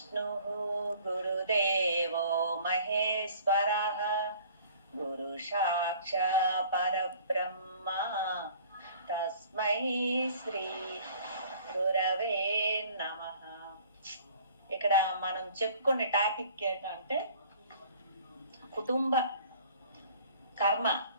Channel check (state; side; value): inverted; both; correlation -0.51